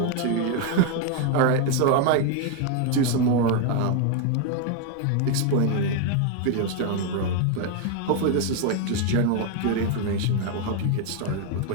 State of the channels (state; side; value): different; both; correlation 0.01